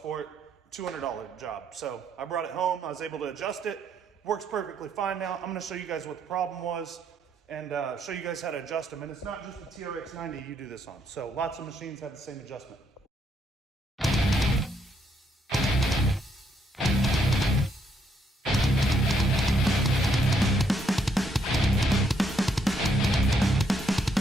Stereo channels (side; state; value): both; normal; correlation 0.73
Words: it. $200 job. So I brought it home. I was able to adjust it. Works perfectly fine now. I'm going to show you guys what the problem was and show you guys how to adjust them. And it's not just the TRX90 you do this on. So lots of machines have the same adjustment.